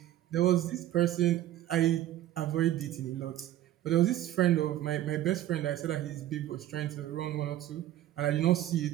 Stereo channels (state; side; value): quieter; left; 13.1 dB